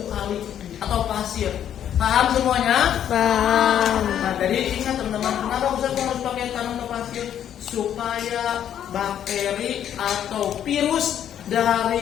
kali atau pasir. Paham semuanya? Paham. Nah, jadi ingat teman-teman, kenapa Ustaz harus pakai tanam atau pasir? Supaya bakteri atau virus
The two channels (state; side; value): quieter; right; 10.0 dB